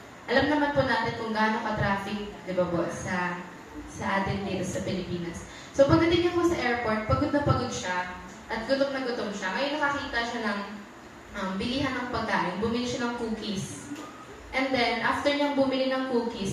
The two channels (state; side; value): identical; both; correlation 1.00